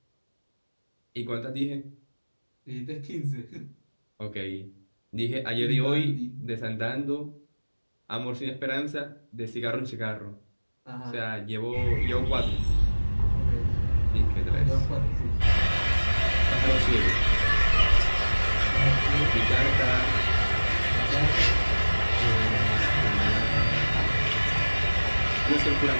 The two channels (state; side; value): inverted; both; correlation -1.00